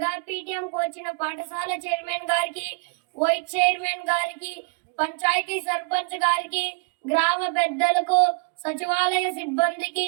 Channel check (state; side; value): quieter; left; 33.3 dB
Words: పీటీఎం వచ్చిన పాఠశాల చైర్మన్ గారికి, వైస్ చైర్మన్ గారికి, పంచాయతీ సర్పంచ్ గారికి, గ్రామ పెద్దలకు, సచివాలయ సిబ్బందికి